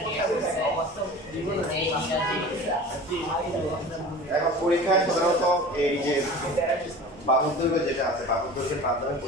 এখন পরীক্ষায় সাধারণত এই যে বাহুর দৈর্ঘ্য যেটা আছে বাহুর দৈর্ঘ্যের মাধ্যমে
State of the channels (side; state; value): both; normal; correlation 0.38